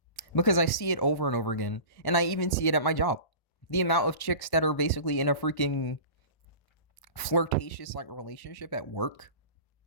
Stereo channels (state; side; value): late; right; 1.1 ms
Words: Because I see it over and over again. And I even see it at my job. The amount of chicks that are basically in a freaking flirtatious like relationship at work